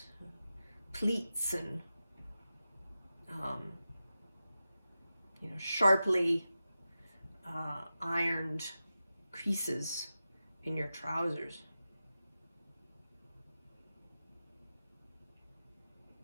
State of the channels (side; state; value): both; inverted; correlation -0.92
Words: pleats, and sharply ironed creases in your trousers?